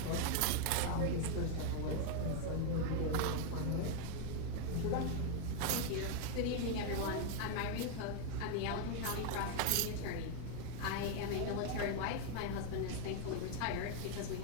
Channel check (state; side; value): different; both; correlation 0.01